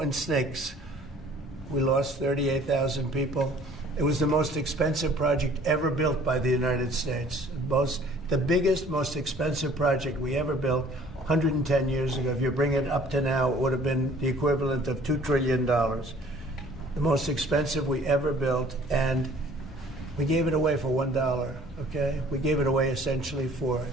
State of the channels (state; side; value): normal; both; correlation 0.53